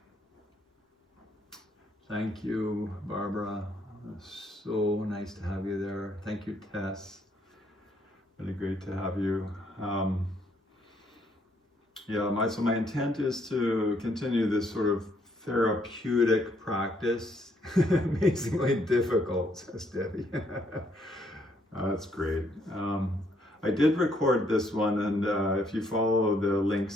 Thank you, Barbara. So nice to have you there. Thank you, Tess. Really great to have you. So my intent is to continue this sort of therapeutic practice. Amazingly difficult, says Debbie. That's great. I did record this one, and if you follow the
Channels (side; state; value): both; normal; correlation 0.70